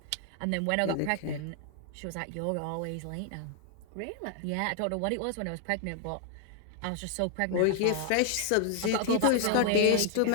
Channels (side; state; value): both; different; correlation 0.00